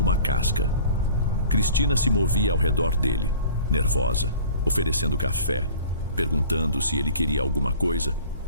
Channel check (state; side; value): inverted; both; correlation -0.45